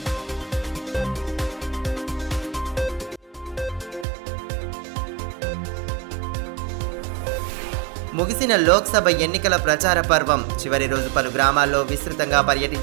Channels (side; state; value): left; drops out; at 4.0 s